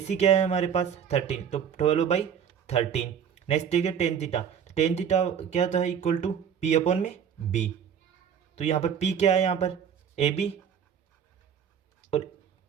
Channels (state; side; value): quieter; left; 8.0 dB